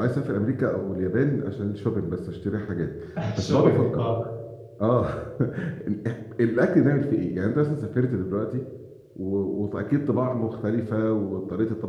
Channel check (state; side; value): identical; both; correlation 1.00